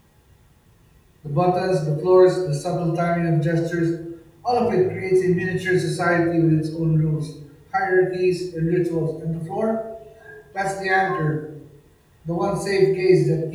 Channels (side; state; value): both; identical; correlation 1.00